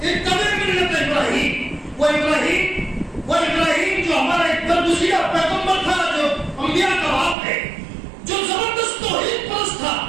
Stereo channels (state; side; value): drops out; left; at 7.4 s